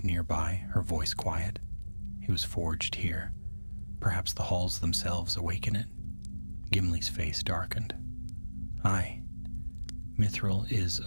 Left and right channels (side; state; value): both; inverted; correlation -1.00